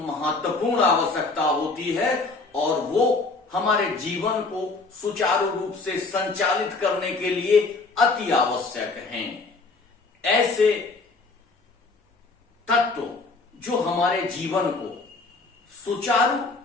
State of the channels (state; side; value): quieter; right; 3.8 dB